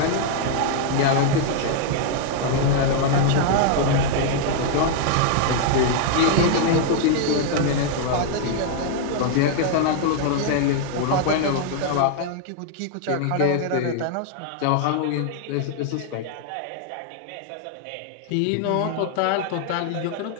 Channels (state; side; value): different; both; correlation 0.00